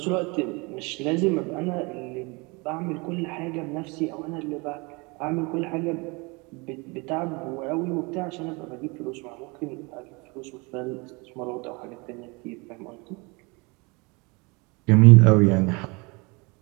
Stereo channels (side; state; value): left; quieter; 28.0 dB